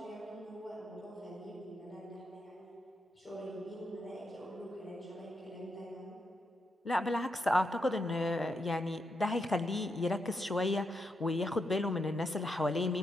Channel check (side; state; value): both; normal; correlation 0.82